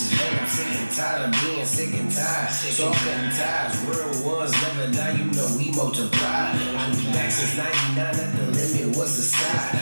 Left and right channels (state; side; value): inverted; both; correlation -1.00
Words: Man, I'm sick and tired of being sick and tired. So I'm cutting ties, real ones never die, you know we multiply. I've been back since 99, at the limit, what's the